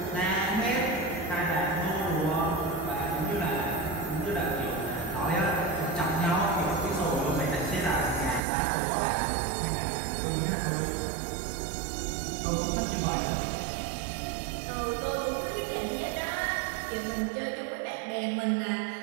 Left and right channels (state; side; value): drops out; left; at 8.4 s